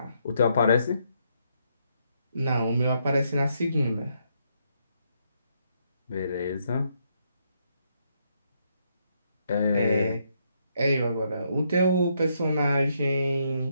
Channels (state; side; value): inverted; both; correlation -0.76